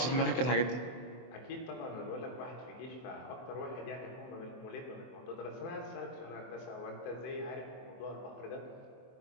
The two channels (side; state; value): right; late; 24 ms